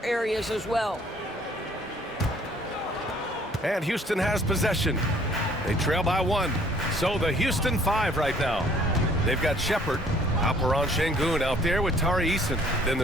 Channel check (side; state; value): both; normal; correlation 0.58